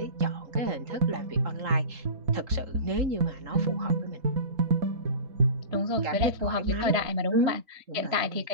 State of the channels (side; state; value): left; late; 3.7 ms